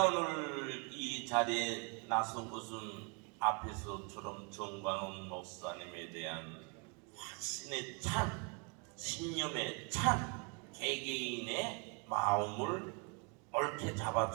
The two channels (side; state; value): left; quieter; 33.6 dB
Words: 오늘 이 자리에 나선 것은 앞에서처럼 정광훈 목사님에 대한 확신에 찬, 신념에 찬 개개인의 마음을 옳게